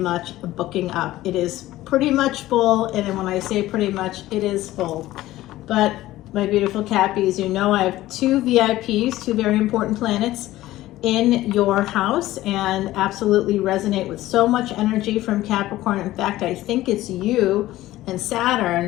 booking up. It is pretty much full, and when I say pretty much, it is full. But my beautiful Cappies, I have two VIPs, two very important planets in your house, and absolutely resonate with so much energy from Capricorn. In fact, I think it's you and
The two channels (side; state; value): right; quieter; 15.9 dB